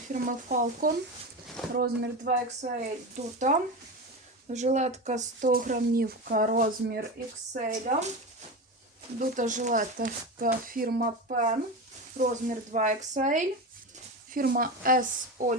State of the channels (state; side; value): normal; both; correlation 0.22